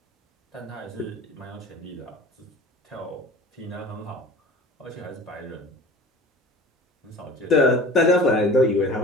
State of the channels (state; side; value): normal; both; correlation 0.41